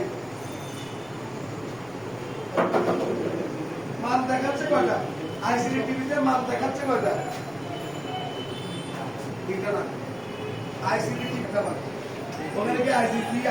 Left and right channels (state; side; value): noise; left; rumble, 24 dB below the sound